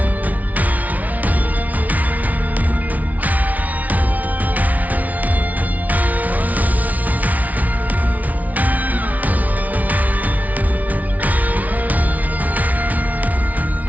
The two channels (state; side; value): late; left; 0.073 ms